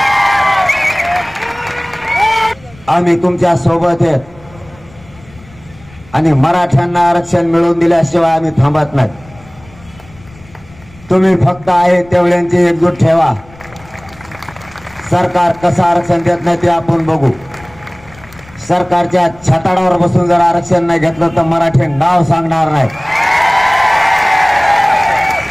आम्ही तुमच्या सोबत आहेत आणि मराठ्यांना आरक्षण मिळवून दिल्याशिवाय आम्ही थांबत नाही. तुम्ही फक्त आहे तेवढ्यांची एकजूट ठेवा. सरकार कसं आरक्षण देत नाही ते आपण बघू. सरकारच्या छताडावर बसून जर आरक्षण नाही घेतलं तर मराठी नाव सांगणार नाही.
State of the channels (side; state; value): left; noise; rumble, 24 dB below the sound